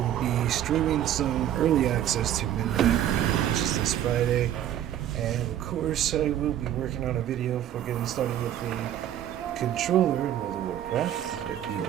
be streaming some early access to Midnight, which is this Friday. And of course, I will be working on a video for getting started with the controller in World of Warcraft. If you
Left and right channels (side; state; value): left; quieter; 11.3 dB